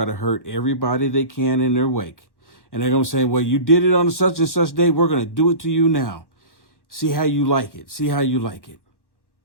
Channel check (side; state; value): right; late; 1.1 ms